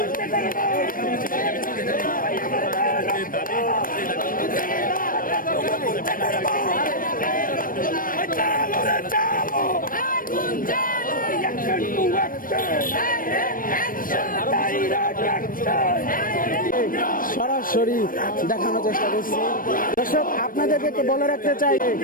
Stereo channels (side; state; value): right; late; 0.41 ms